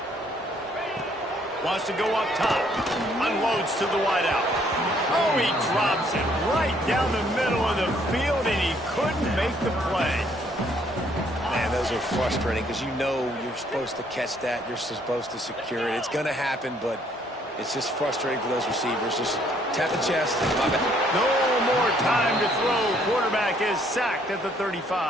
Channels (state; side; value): normal; both; correlation 0.65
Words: Wants to go up top. Unloads to the wideout. Oh, he drops it right down the middle of the field, and he couldn't make the play. Man, those are frustrating because you know you're supposed to catch that. You're supposed to secure it. It's going to happen, but it's just frustrating for those receivers. Just tap the chest. No more time to throw. Quarterback is sacked at the 35.